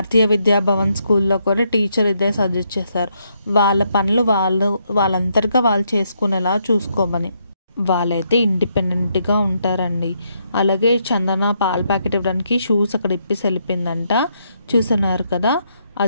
విద్యాభవన్ స్కూల్లో కూడా టీచర్ ఇదే సజెస్ట్ చేశారు, వాళ్ళ పనులు వాళ్ళంతటిగా వాళ్ళు చేసుకునేలా చూసుకోమని. వాళ్ళైతే ఇండిపెండెంట్గా ఉంటారండి. అలాగే చందన పాల ప్యాకెట్ ఇవ్వడానికి షూస్ అక్కడ ఇప్పేసి వెళ్ళిపోయిందంట. చూస్తున్నారు కదా,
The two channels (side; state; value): both; inverted; correlation -0.76